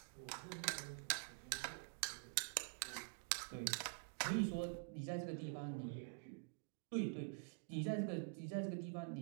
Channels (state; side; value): silent; left; digital silence